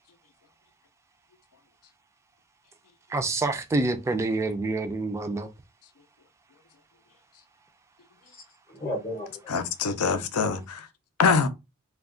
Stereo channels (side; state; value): both; normal; correlation 0.30